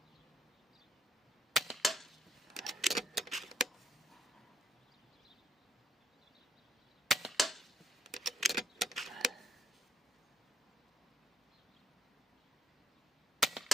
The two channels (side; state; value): both; normal; correlation 0.71